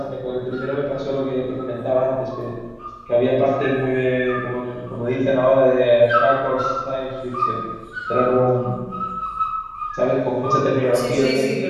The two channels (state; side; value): identical; both; correlation 1.00